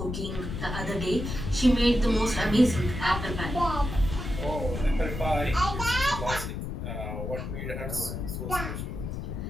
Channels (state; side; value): noise; left; rumble, 5 dB below the sound